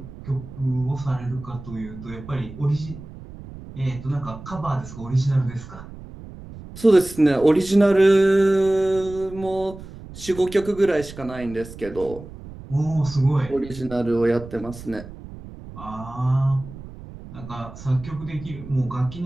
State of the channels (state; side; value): noise; right; rumble, 15 dB below the sound